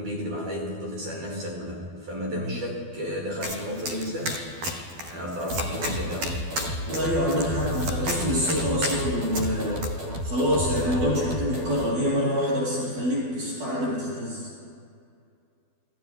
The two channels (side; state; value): left; late; 12 ms